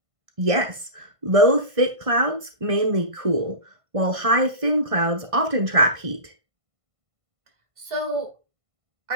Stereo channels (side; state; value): left; late; 1.5 ms